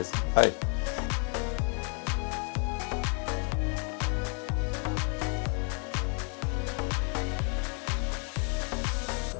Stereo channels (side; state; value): right; quieter; 39.5 dB